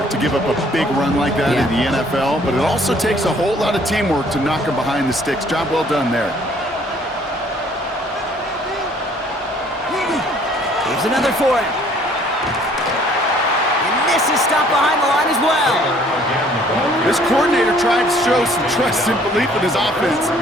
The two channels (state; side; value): normal; both; correlation 0.59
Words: to give up a big run like that in the NFL, but it also takes a whole lot of teamwork to knock them behind the sticks. Job well done there. Here's another for him. And this is stopped behind the line as well. This coordinator tried to show some trust and belief in his offense.